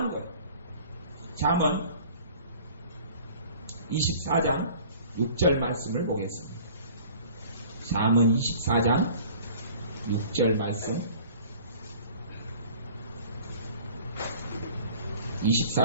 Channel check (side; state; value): both; inverted; correlation -0.48